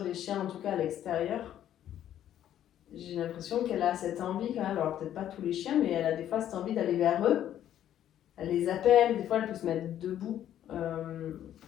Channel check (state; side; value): quieter; right; 11.2 dB